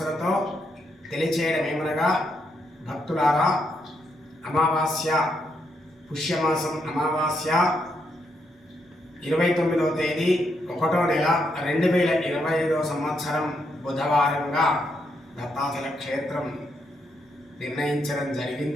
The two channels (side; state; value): both; normal; correlation 0.78